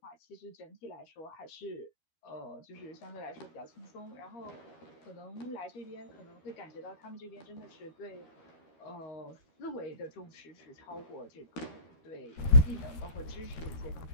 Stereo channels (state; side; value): late; right; 13 ms